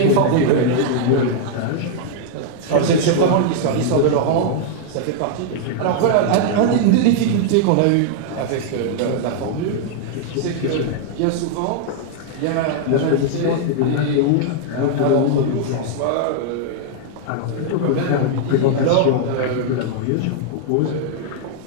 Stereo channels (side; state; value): both; different; correlation 0.00